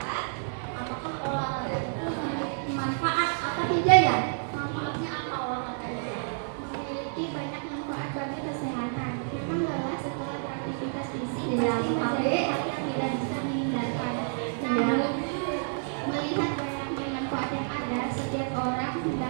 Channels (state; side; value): silent; left; digital silence